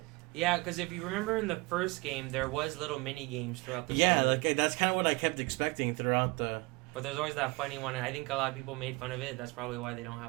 Yeah, because if you remember in the first game, there was little mini games throughout the story. Yeah, like, that's kind of what I kept expecting throughout the... But there's always that funny one, and I think a lot of people made fun of it. That's probably why they don't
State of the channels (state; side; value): quieter; left; 24.9 dB